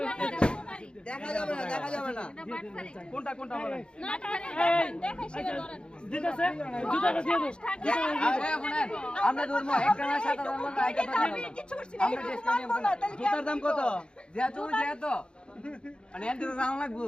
দেখা যাবে না কোনটা কোনটা বলেন আমরা ধরবো একটা না 7,000 টাকা একটা কিছু করছি না মানবো না তাহলে কি জুতার দাম কত যেত মানে এত দাম লাগবে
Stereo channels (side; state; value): right; late; 0.053 ms